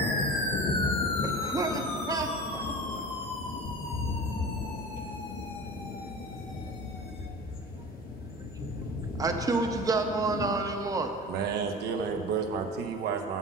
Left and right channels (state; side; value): normal; both; correlation 0.35